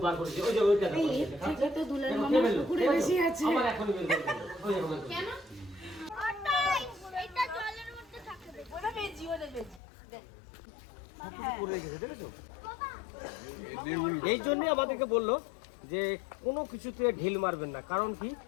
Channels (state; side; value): drops out; right; at 9.8 s